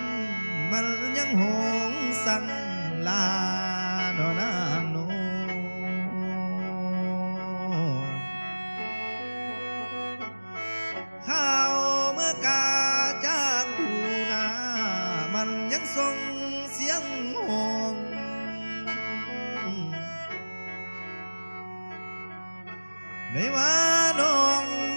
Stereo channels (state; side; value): inverted; both; correlation -1.00